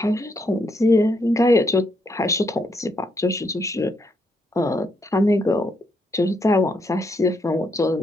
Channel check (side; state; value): both; normal; correlation 0.76